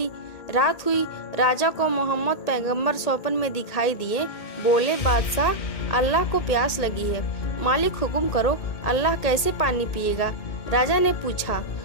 रात हुई। राजा को मोहम्मद पैगंबर स्वप्न में दिखाई दिए। बोले, बादशाह अल्लाह को प्यास लगी है, मालिक हुक्म करो, अल्लाह कैसे पानी पिएगा? राजा ने पूछा।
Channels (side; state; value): right; late; 1.8 ms